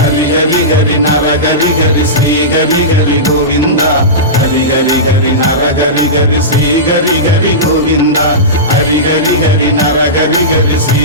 ஹரி ஹரி நரஹரி ஹரி ஸ்ரீ ஹரி ஹரி கோவிந்தா ஹரி ஹரி ஹரி நரஹரி ஹரி ஸ்ரீ ஹரி ஹரி கோவிந்தா ஹரி ஹரி ஹரி நரஹரி ஹரி ஸ்ரீ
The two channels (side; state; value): both; normal; correlation -0.18